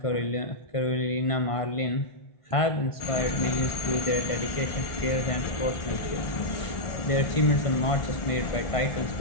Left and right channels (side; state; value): right; late; 1.5 ms